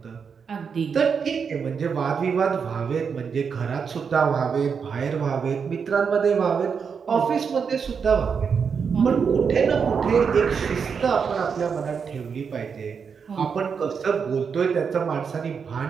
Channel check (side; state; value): left; quieter; 6.2 dB